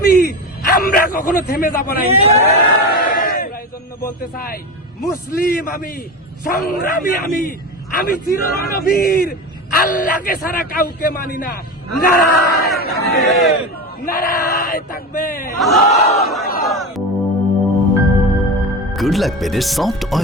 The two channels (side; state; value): both; normal; correlation 0.24